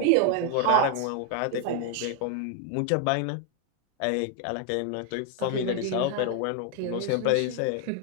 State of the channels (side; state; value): both; different; correlation 0.01